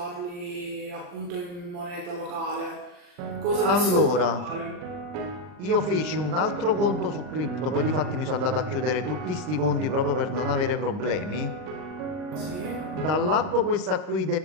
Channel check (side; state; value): left; late; 40 ms